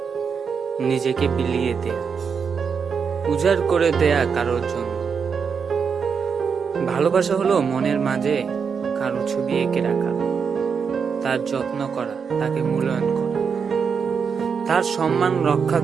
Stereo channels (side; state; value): left; quieter; 6.2 dB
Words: নিজেকে বিলিয়ে দেয়া, উজাড় করে দেয়া কারোর জন্য। ভালোবাসা হলো মনের মাঝে কারো ছবি এঁকে রাখা, তার যত্ন করা, তাকে মূল্যায়ন করা, তার সম্মান রক্ষা